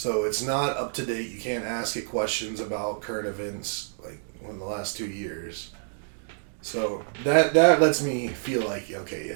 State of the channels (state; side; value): silent; left; digital silence